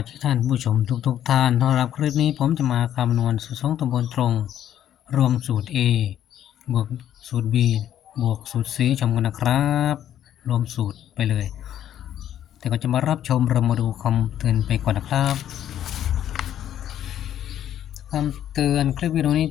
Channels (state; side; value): quieter; right; 10.9 dB